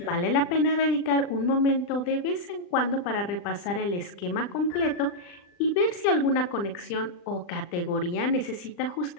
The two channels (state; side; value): late; right; 39 ms